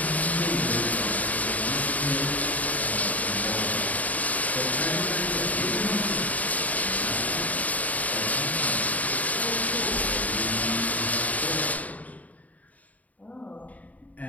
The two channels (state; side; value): late; right; 0.073 ms